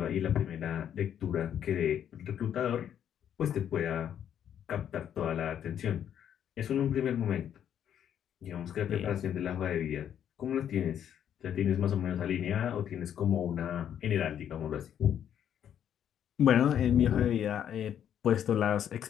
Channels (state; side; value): quieter; right; 9.5 dB